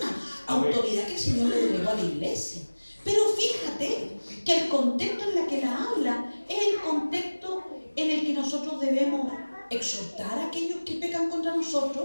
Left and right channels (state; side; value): inverted; both; correlation -1.00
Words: autoridad que el Señor le delegó a la iglesia. Pero fíjate que el contexto en el que la habla es el contexto en el que nosotros debemos exhortar a aquellos que pecan contra